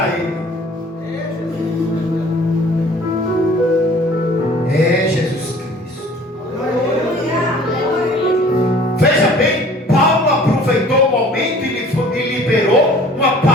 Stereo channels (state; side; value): normal; both; correlation 0.50